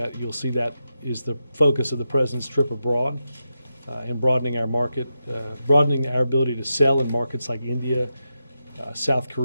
you'll see that is the focus of the president's trip abroad and broadening our market, broadening our ability to sell in markets like India, South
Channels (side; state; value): both; inverted; correlation -0.88